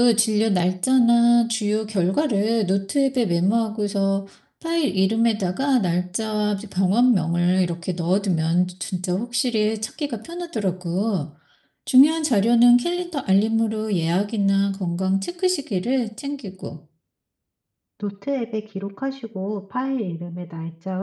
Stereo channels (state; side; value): identical; both; correlation 1.00